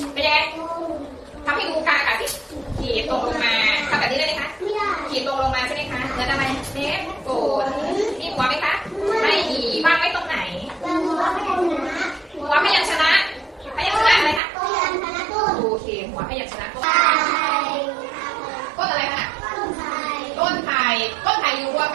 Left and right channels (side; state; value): left; drops out; at 14.4 s